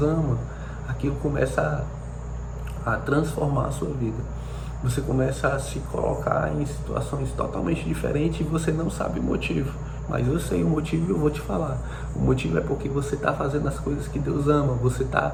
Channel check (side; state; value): both; identical; correlation 1.00